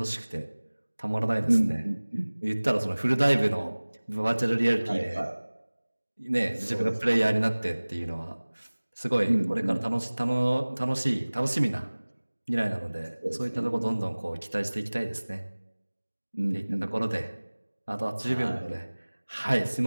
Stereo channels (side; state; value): both; inverted; correlation -1.00